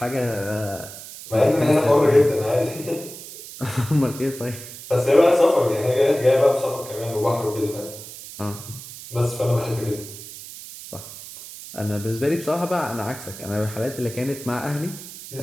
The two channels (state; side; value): noise; right; hiss, 14 dB below the sound